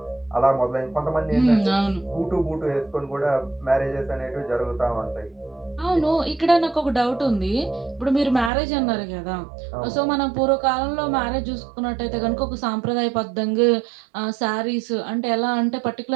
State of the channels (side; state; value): left; drops out; at 8.5 s